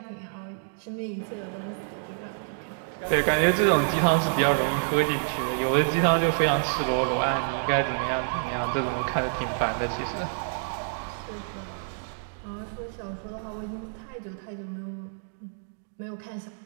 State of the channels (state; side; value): silent; left; digital silence